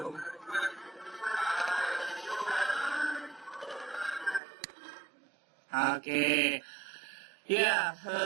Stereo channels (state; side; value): drops out; left; at 4.4 s